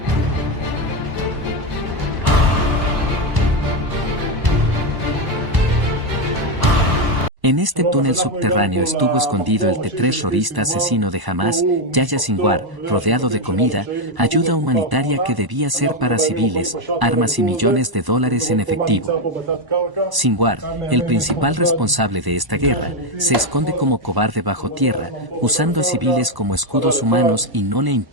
En este túnel subterráneo estuvo escondido el terrorista asesino de Hamas, Yahya Sinwar, rodeado de comida, ayuda humanitaria que debía ser para civiles, armas y millones de dólares en efectivo. Sinwar, el principal responsable de esta guerra, se esconde como cobarde bajo tierra, usando a civiles como escudos humanos y no le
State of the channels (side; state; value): left; late; 1.0 ms